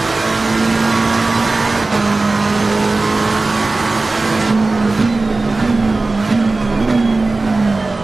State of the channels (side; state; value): left; quieter; 3.4 dB